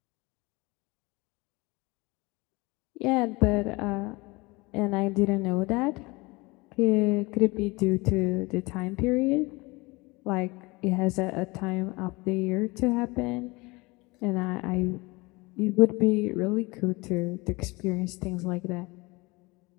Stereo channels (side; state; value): right; quieter; 24.2 dB